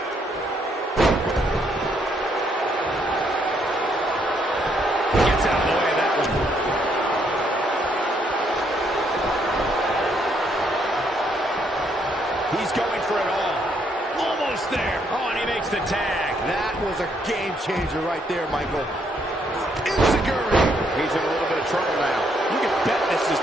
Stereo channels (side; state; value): both; normal; correlation 0.72